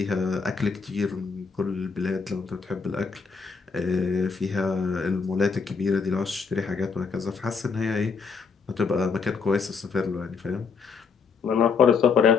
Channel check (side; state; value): right; quieter; 5.3 dB